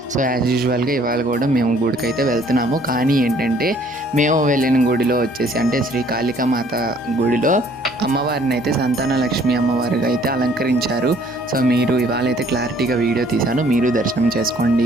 సో యాజ్ యూజువల్గా ఇవాళ కూడా మేము గుడికి అయితే వెళ్తున్నాము. కానీ ఏంటంటే మేము వెళ్ళిన గుడిలో వచ్చేసి అంటే శ్రీ కాళికామాత గుడిలో అమ్మవారిని అయితే సంతాన లక్ష్మి అమ్మవారిగా అయితే అలంకరించారు. సో మీరు ఇవాళ అయితే క్లారిటీగా వీడియో తీశాను, మీరు దర్శనం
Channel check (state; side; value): normal; both; correlation 0.59